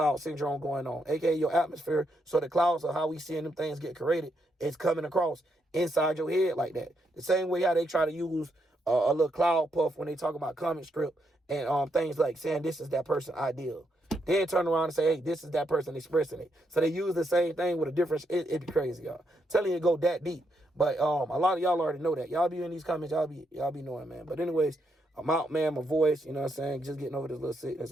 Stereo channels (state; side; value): normal; both; correlation 0.79